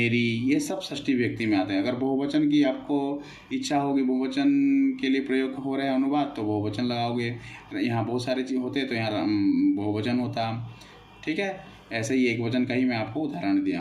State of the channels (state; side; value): identical; both; correlation 1.00